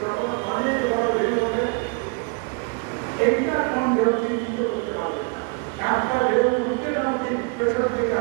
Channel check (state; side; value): quieter; left; 35.5 dB